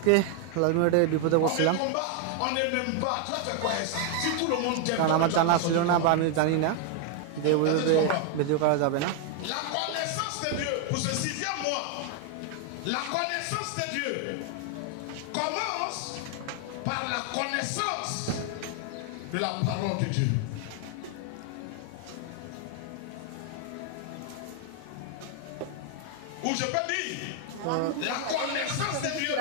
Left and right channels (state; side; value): different; both; correlation 0.00